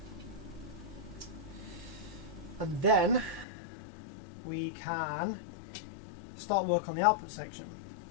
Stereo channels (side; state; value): right; drops out; at 3.5 s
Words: and then we can start work on the output section.